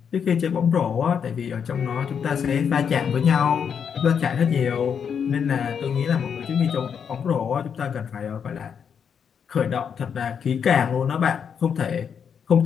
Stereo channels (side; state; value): right; quieter; 7.2 dB